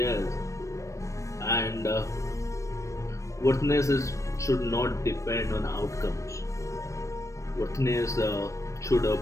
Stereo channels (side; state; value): right; late; 0.15 ms